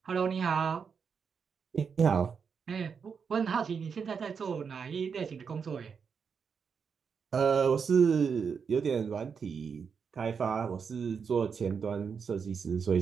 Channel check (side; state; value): left; quieter; 6.2 dB